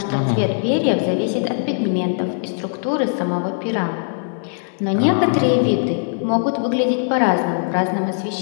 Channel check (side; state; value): right; silent; digital silence